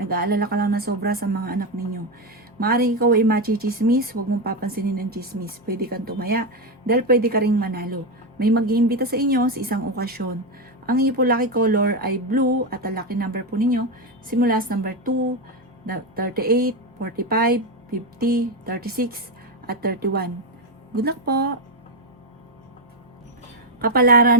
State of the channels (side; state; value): both; normal; correlation 0.10